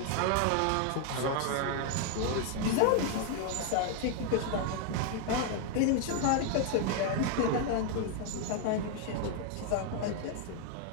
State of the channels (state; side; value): different; both; correlation 0.00